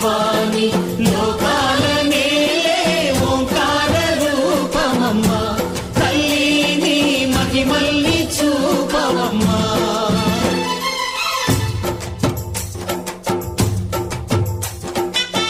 లోకాల నేలే ఓంకార రూపమమ్మా, తల్లిని మహిమల్ని చూపవమ్మా.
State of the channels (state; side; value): identical; both; correlation 1.00